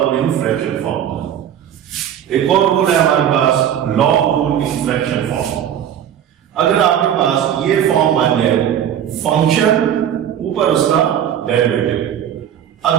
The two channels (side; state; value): left; quieter; 9.8 dB